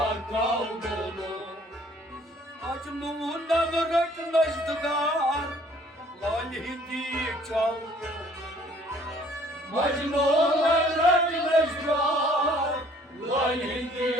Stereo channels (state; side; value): normal; both; correlation 0.58